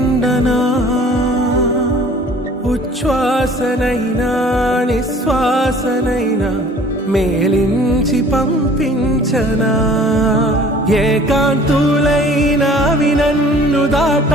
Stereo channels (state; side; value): normal; both; correlation 0.51